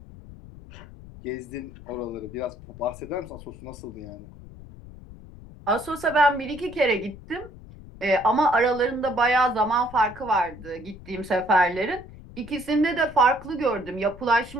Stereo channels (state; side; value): noise; left; rumble, 17 dB below the sound